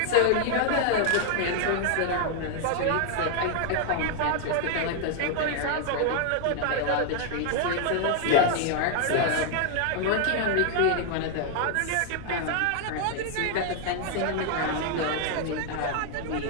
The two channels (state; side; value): different; both; correlation 0.00